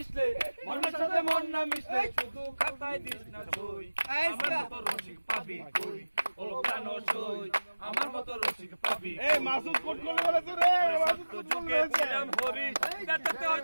মনের সাথে মন না মিশলে শুধু খাতায় দিস না সই। আমার মতো রসিক পাবি কই, হলো প্রাণ সই। আমার মতো রসিক পাবি। এই মাসুদ কোট করে বলেছে রে, মাসুদ কোট করে বলেছে। হরি কাটাতে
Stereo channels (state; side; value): inverted; both; correlation -1.00